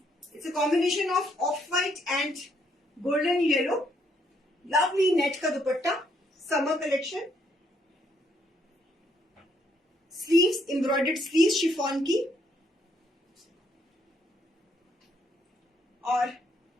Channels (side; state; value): both; normal; correlation 0.71